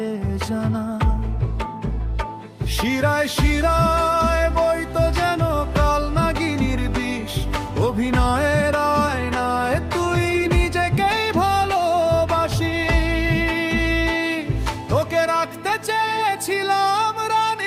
জানা। শিরায় শিরায় বইতো যেন কাল নাগিনীর বিষ, অভিনয়ের আয়নায় তুই নিজেকেই ভালোবাসি। তোকে রাখতে চেয়েছিলাম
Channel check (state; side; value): identical; both; correlation 1.00